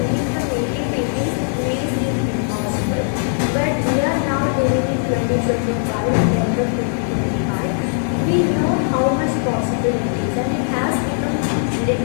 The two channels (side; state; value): right; silent; digital silence